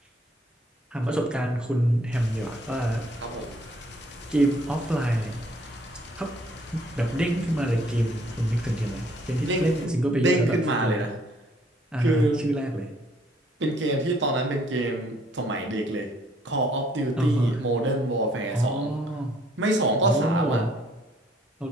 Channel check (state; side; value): normal; both; correlation 0.63